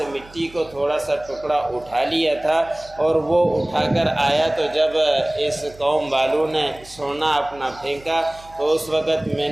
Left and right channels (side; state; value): right; noise; hum, 22 dB below the sound